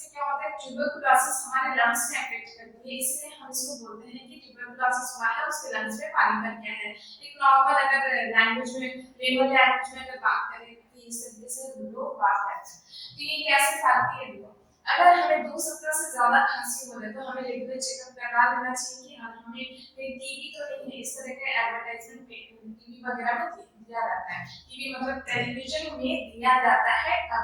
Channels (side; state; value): both; identical; correlation 1.00